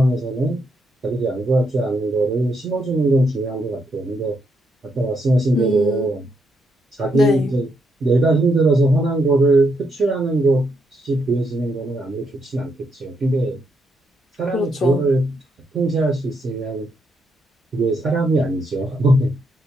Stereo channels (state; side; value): normal; both; correlation 0.78